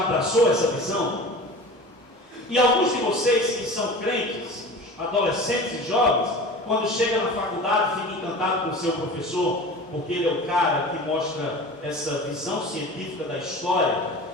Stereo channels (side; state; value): both; normal; correlation 0.36